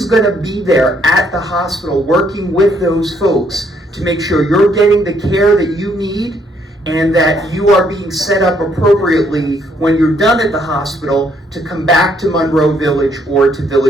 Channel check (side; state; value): both; normal; correlation 0.69